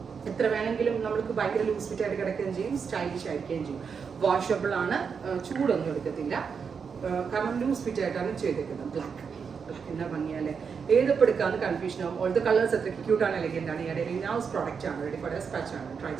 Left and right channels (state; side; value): quieter; left; 6.1 dB